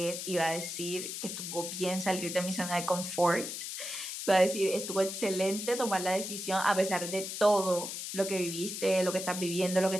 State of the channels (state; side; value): noise; left; hiss, 6 dB below the sound